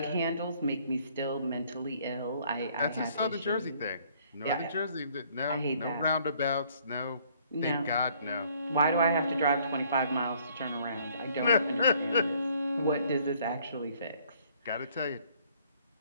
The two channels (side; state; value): both; inverted; correlation -0.62